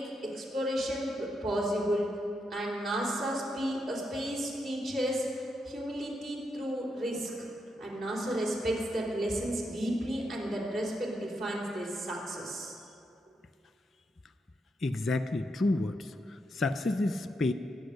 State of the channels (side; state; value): both; normal; correlation 0.82